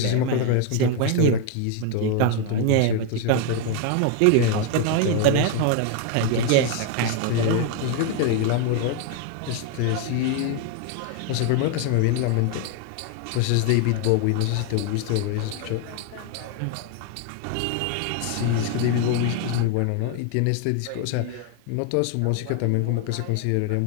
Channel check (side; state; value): both; different; correlation 0.01